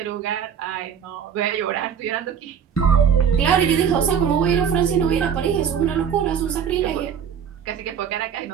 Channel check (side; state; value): left; quieter; 7.9 dB